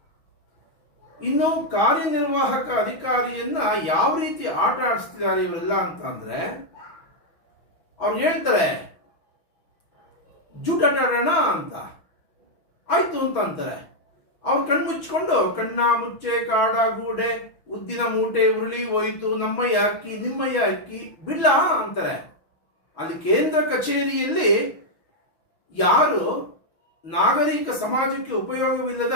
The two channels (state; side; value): late; right; 6.1 ms